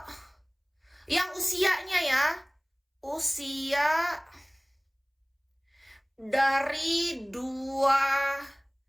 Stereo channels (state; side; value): identical; both; correlation 1.00